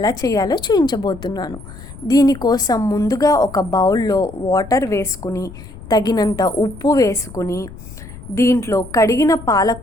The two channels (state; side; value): noise; left; rumble, 15 dB below the sound